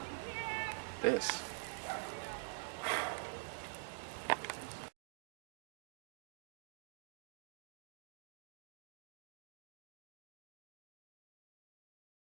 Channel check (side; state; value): left; silent; digital silence